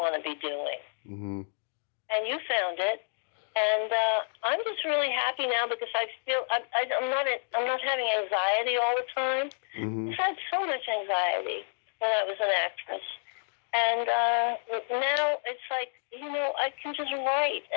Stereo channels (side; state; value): right; silent; digital silence